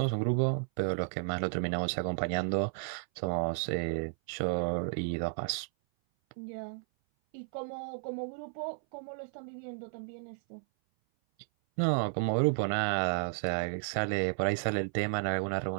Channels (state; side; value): silent; left; 56 dB below the other